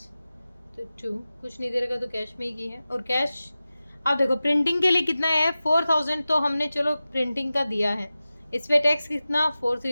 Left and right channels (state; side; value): inverted; both; correlation -0.95